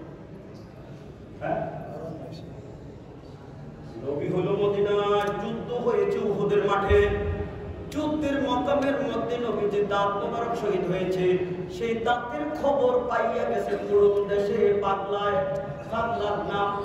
নবী হলো মদিনায়, যুদ্ধ হয়েছে উহুদের মাঠে। যুদ্ধের মকামের মধ্যে নবীজির দাঁত মোবারক শহীদ হয়েছে। সেই দাঁতের খবর পাইয়া গেছে পুরো দেশে পাগলায়। পাগলার নাম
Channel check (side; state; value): both; identical; correlation 1.00